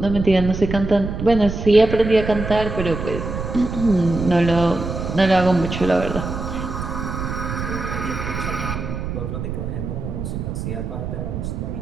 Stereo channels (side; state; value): right; noise; rumble, 5 dB below the sound